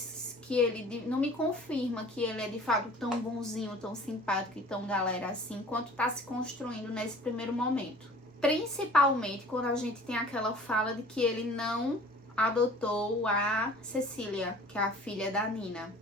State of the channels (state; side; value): normal; both; correlation 0.47